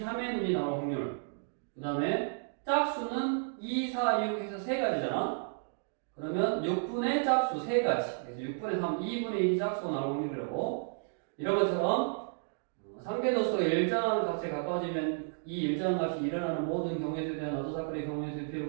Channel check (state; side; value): silent; left; digital silence